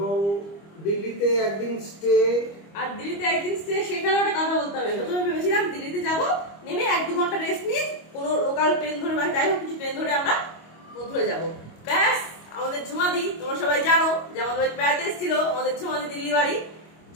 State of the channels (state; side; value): late; right; 25 ms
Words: দিল্লিতে একদিন স্টে। আর দিল্লিতে একদিন স্টে, সেখানে একটা কথা বলতে হবে। প্রথমে ভেবেছিলাম দিল্লিতে যাব, নেমে 1-2 ঘন্টা রেস্ট নিয়ে কোনো লোকাল ট্রেন ধরে বা যাই হোক কিছু ট্রেন ধরে আমরা মথুরা যাব। ব্যাস, আমাদের ঝুমাদি, তোমরা সবাই জানো যে আমাদের বাড়িতে বেড়াতে এসেছিল আমাদের ঝুমাদি, দিল্লি বাড়ি।